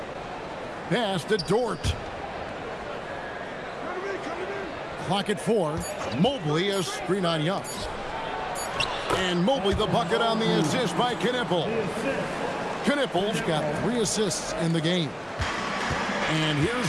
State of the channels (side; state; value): both; identical; correlation 1.00